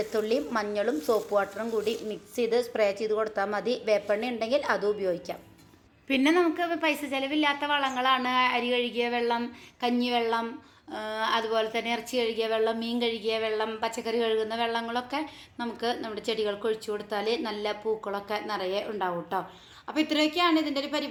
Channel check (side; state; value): both; identical; correlation 1.00